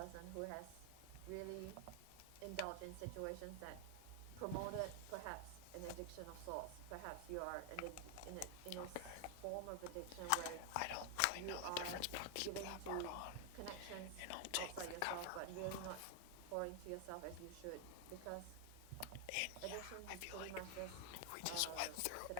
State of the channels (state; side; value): different; both; correlation 0.00